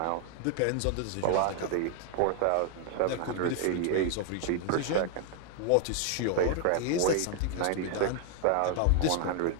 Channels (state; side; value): different; both; correlation 0.00